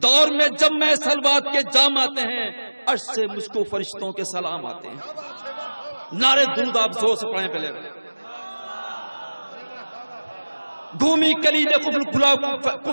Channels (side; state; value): both; inverted; correlation -1.00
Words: دور میں جب میں سلوات کے جام آتے ہیں، عرش سے مجھ کو فرشتوں کے سلام آتے ہیں۔ نعرے درود آپ زور سے پڑھیں پہلے۔ گھومی کلید قفل کھلا